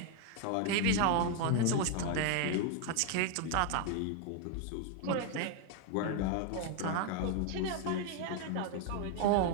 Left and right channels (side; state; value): both; different; correlation 0.01